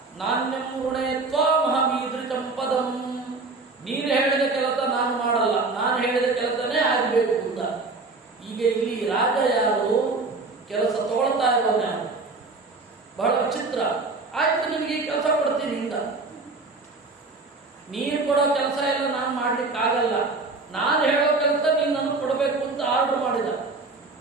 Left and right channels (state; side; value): quieter; left; 3.7 dB